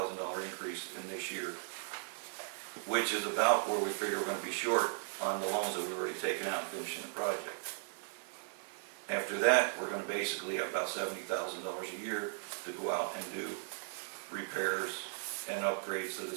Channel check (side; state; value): left; silent; 53 dB below the other